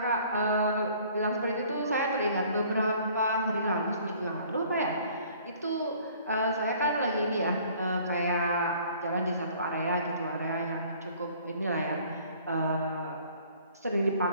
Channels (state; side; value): inverted; both; correlation -0.55